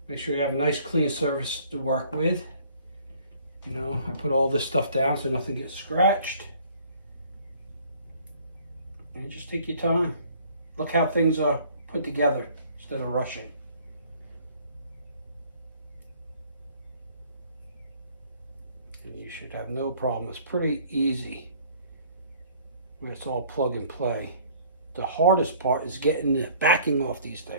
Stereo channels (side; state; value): both; inverted; correlation -0.56